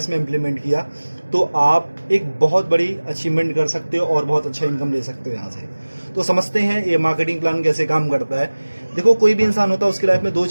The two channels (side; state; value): both; inverted; correlation -1.00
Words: में इम्प्लीमेंट किया, तो आप एक बहुत बड़ी अचीवमेंट कर सकते हो और बहुत अच्छा इनकम ले सकते हो यहाँ से। तो समझते हैं ये मार्केटिंग प्लान कैसे काम करता है। देखो, कोई भी इंसान होता है, उसकी लाइफ में दो